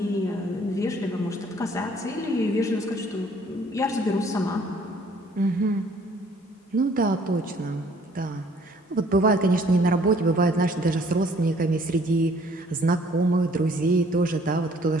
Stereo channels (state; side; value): normal; both; correlation 0.59